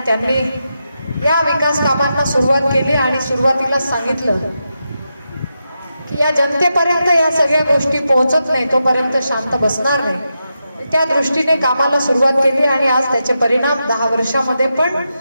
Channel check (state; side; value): inverted; both; correlation -0.87